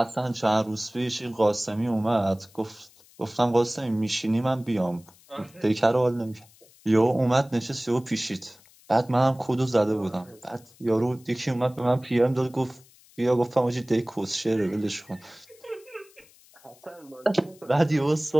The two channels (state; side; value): noise; left; hiss, 27 dB below the sound